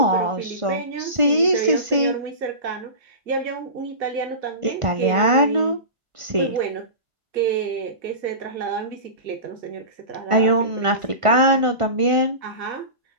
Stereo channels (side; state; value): left; late; 1.4 ms